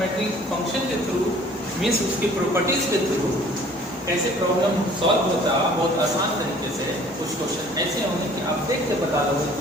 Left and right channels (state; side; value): normal; both; correlation 0.53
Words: फंक्शन के थ्रू मीन्स उसकी प्रॉपर्टीज के थ्रू कैसे प्रॉब्लम सॉल्व होता है बहुत आसान तरीके से। कुछ क्वेश्चन ऐसे होंगे कि आप देख के बता लोगे